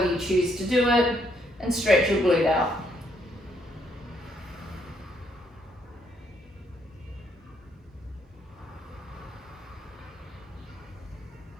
you choose to do it, and stretch your glute out.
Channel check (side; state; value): both; normal; correlation 0.72